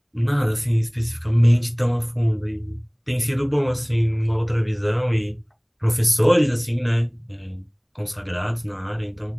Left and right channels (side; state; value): both; identical; correlation 1.00